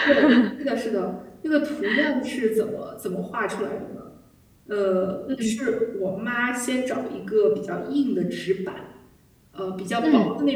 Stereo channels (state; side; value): identical; both; correlation 1.00